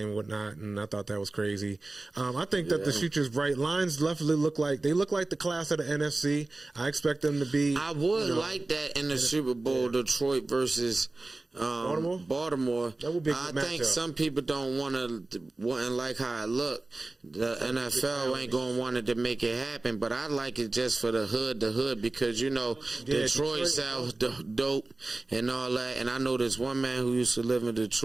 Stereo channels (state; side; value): quieter; left; 3.1 dB